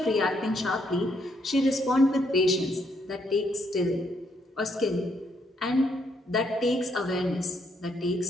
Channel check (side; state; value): both; normal; correlation 0.73